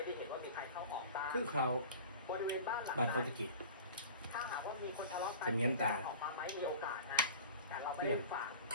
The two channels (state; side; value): inverted; both; correlation -0.39